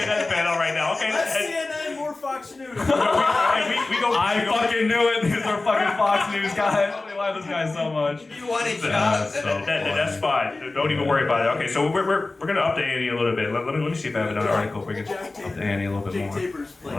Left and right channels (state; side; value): quieter; right; 3.3 dB